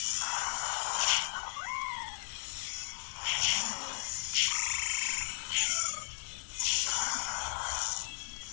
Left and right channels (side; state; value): right; silent; 54 dB below the other